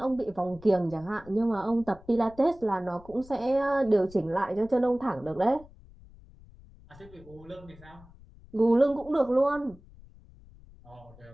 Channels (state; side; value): noise; left; rumble, 22 dB below the sound